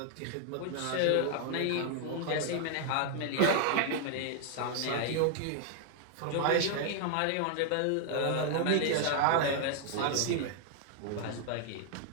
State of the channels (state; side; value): different; both; correlation 0.00